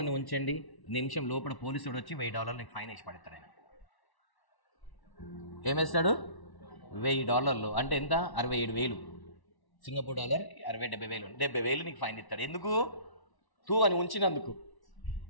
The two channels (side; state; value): right; late; 1.1 ms